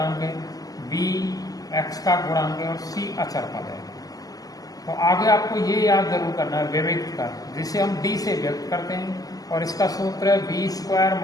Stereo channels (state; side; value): late; right; 0.17 ms